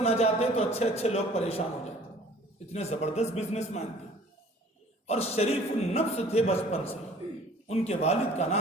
نہ جاتے تو اچھے لوگ پریشان ہو جاتے، اتنے زبردست بزنس مین تھے، اور شریف النفس تھے بچپن سے۔ ان کے والد کا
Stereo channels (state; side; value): normal; both; correlation 0.51